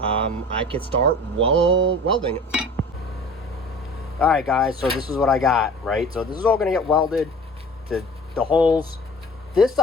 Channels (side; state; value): both; normal; correlation 0.43